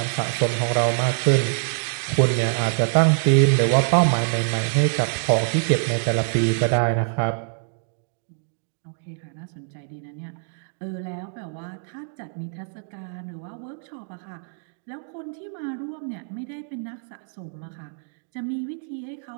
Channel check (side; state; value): left; silent; digital silence